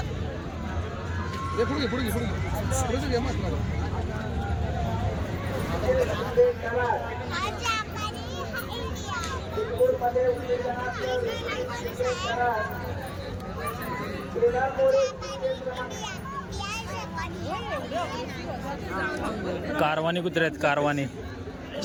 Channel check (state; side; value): identical; both; correlation 1.00